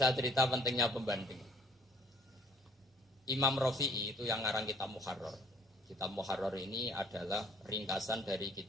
saya cerita pentingnya pembanding. Imam Rafi'i itu yang ngarang kitab Muharrar. Kitab Muharrar ini adalah ringkasan dari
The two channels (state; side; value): normal; both; correlation 0.58